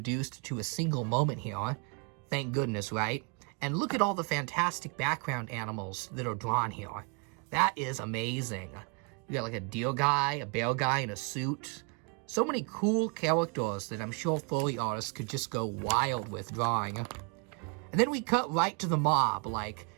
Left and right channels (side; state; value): left; quieter; 35.7 dB